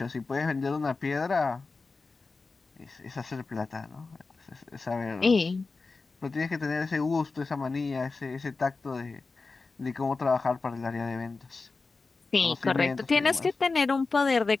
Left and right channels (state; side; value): quieter; right; 4.0 dB